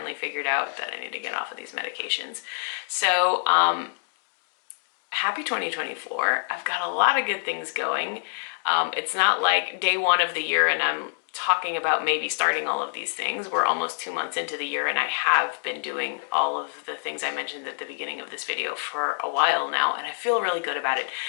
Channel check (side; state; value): right; silent; digital silence